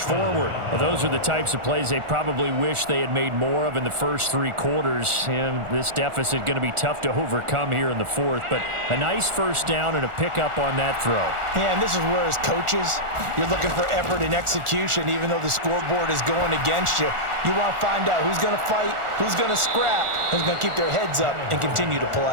Well, those are the types of plays they probably wish they had made more of in the first 3 quarters. And this deficit going to be tough to overcome here in the 4th. But a nice 1st down and a pickup on that throw. Yeah, and this is where as coaches, you're looking for effort and execution. Even though the scoreboard is going against you, you want to find out who's going to fight, who's going to scrap, who's going to keep their heads up and continue to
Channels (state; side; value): late; left; 1.4 ms